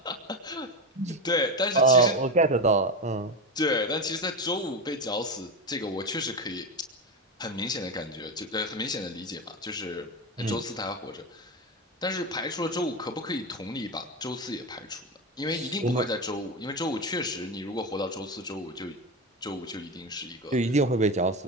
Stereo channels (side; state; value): both; normal; correlation 0.17